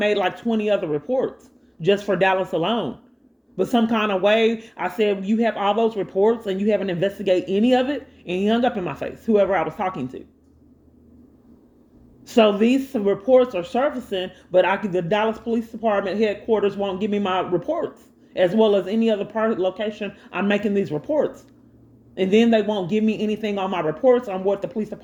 like 20 other reports just for Dallas alone. But some kind of way, I said, you have all those reports and you haven't investigated any of it, and he hung up in my face, whoever I was talking to. So these reports are surfacing, but the Dallas Police Department headquarters won't give me my reports, as well as any other part location I'm making these reports. And then they won't give me anything on my reports on what the police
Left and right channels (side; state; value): both; identical; correlation 1.00